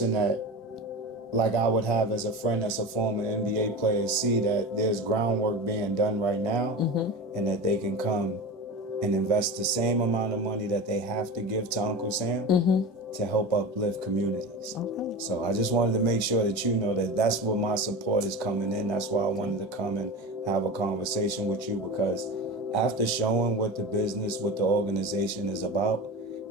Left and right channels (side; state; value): both; normal; correlation 0.28